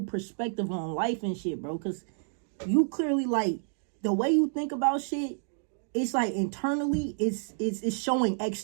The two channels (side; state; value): left; silent; digital silence